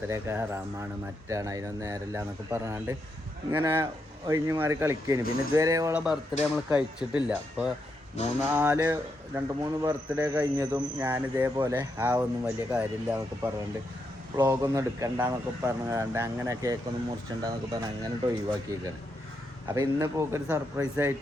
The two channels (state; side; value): normal; both; correlation 0.82